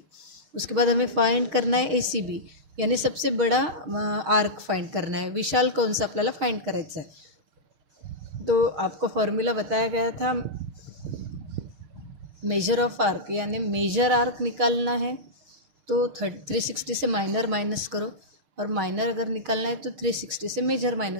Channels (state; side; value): late; left; 6.5 ms